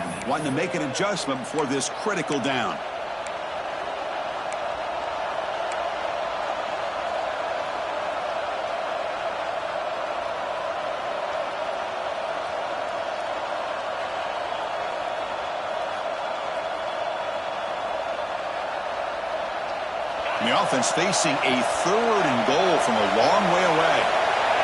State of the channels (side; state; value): both; identical; correlation 1.00